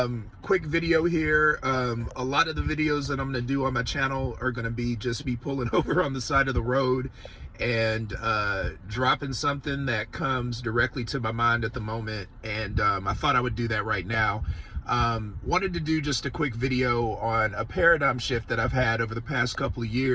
Quick video here. A lot of the videos that I'm going to do on my channel are going to be just me pulling over on the side of the road and dropping something that comes directly to my mind at the moment. And I thought I would do that right now. Wanted to do just a quick video on a paradigm shift that I've had over the past couple of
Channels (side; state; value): both; identical; correlation 1.00